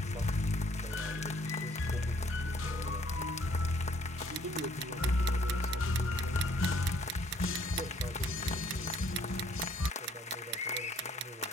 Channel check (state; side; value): normal; both; correlation 0.63